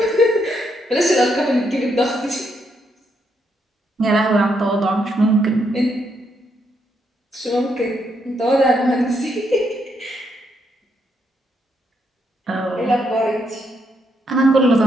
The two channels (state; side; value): normal; both; correlation 0.77